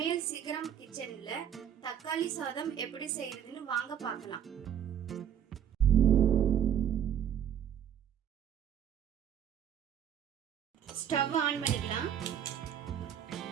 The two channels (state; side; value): quieter; left; 9.2 dB